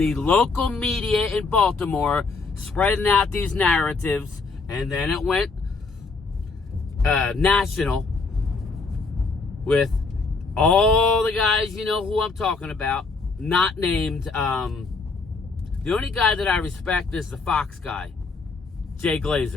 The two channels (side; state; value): right; quieter; 4.1 dB